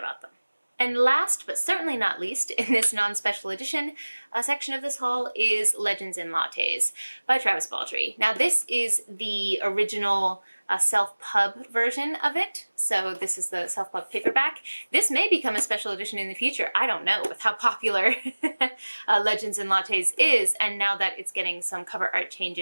them. And last, but certainly not least, in this non-special edition section of this haul is Legends and Lattes by Travis Baldree. Now this is the original self-pub version of it, so this is the self-pub paperback. This may become a special edition in the future, I don't know, with how popular Legends and Lattes is, and now that it's getting some cover art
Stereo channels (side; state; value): both; inverted; correlation -1.00